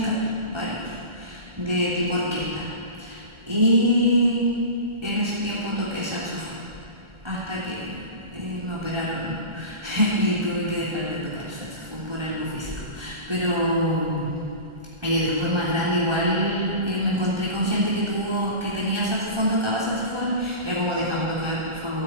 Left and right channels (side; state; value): left; late; 1.4 ms